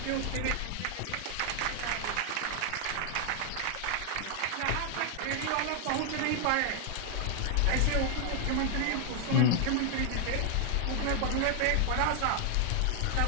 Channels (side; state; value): both; different; correlation 0.00